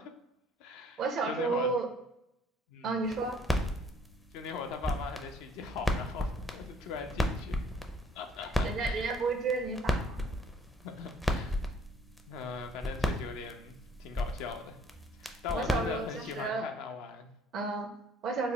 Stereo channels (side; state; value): both; normal; correlation 0.59